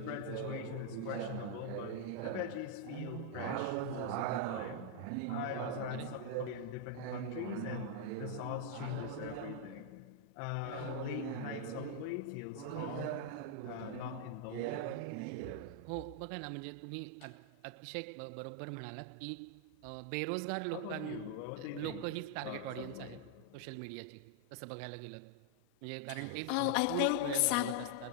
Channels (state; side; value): different; both; correlation 0.00